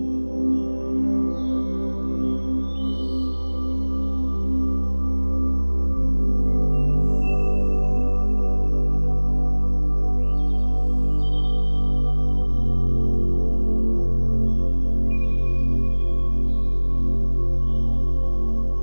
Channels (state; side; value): inverted; both; correlation -1.00